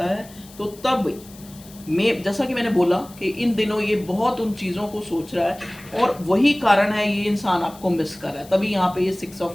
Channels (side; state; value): left; noise; hiss, 21 dB below the sound